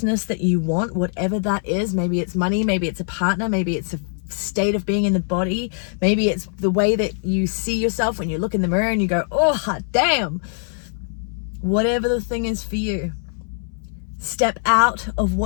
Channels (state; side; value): silent; right; digital silence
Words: that you want, whatever that is. Maybe it's money, maybe it's a partner, maybe it's a state of being in the body, maybe it's the way that you see yourself when you look in the mirror and you go, oh hot damn. Whatever the thing is for you, step out of